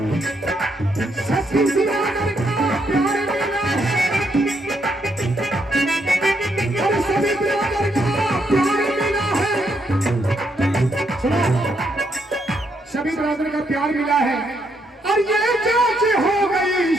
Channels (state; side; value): normal; both; correlation 0.75